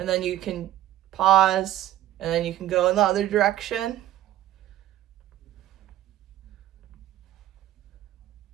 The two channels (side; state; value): left; quieter; 13.4 dB